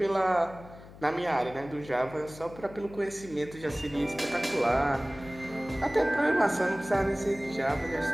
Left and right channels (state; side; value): noise; left; hum, 18 dB below the sound